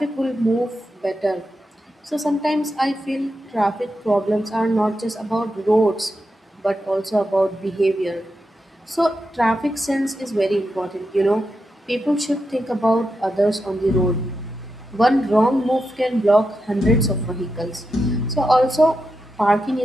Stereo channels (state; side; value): normal; both; correlation 0.87